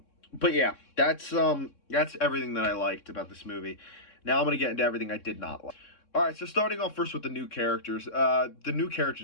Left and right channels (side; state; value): right; late; 3.6 ms